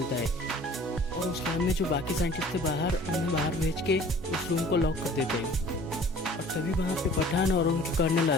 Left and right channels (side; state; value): both; normal; correlation 0.49